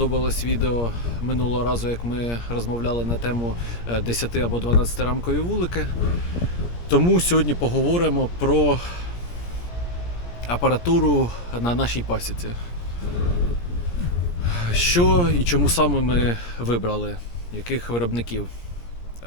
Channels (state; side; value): late; right; 17 ms